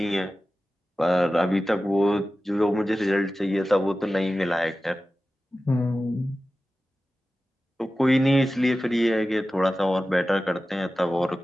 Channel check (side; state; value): both; normal; correlation 0.95